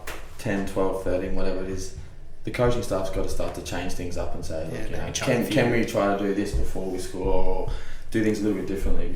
10, 12, 13, whatever it is, the coaching staff's got to start to change things up and say, can we try to do this before we score or do things a little bit differently?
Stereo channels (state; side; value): identical; both; correlation 1.00